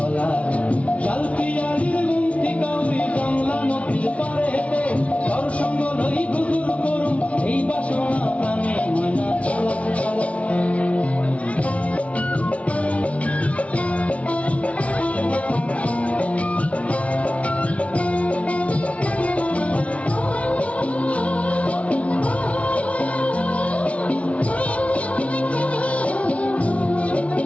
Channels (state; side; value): late; right; 0.064 ms